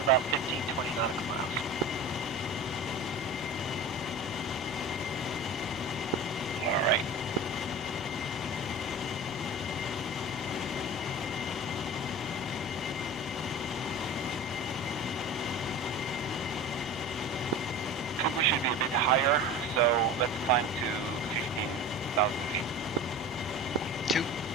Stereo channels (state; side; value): normal; both; correlation 0.34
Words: about 15, 20 nautical miles. All right. I think we should be a bit higher, so let's climb to 15,000 feet. 2.